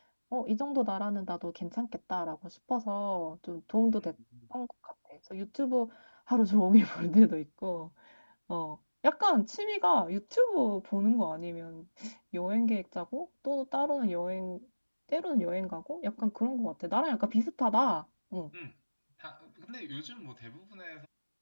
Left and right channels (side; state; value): both; inverted; correlation -1.00